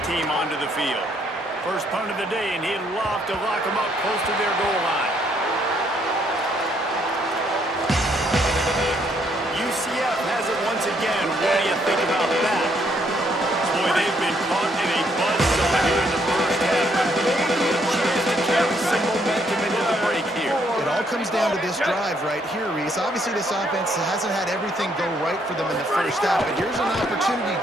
team onto the field. First punt of the day, and he'd love to lock them up close to their goal line. UCF has it once again. What do you think about that? Boy, they've been caught in a buzzsaw here in the first half, but maybe a chance to carry some momentum into the break here. It all comes down to this drive right here, Reese. Obviously, this offense hasn't had everything go right for them in the first half, but here's an opportunity,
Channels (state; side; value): normal; both; correlation 0.70